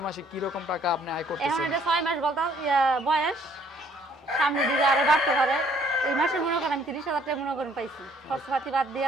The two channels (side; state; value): both; normal; correlation 0.62